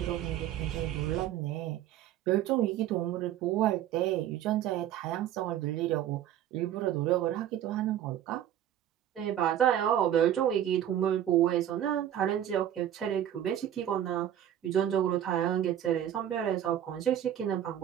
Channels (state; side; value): quieter; left; 11.1 dB